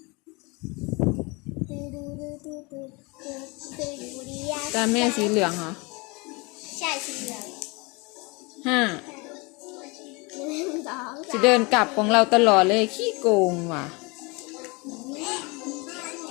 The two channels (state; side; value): quieter; right; 27.7 dB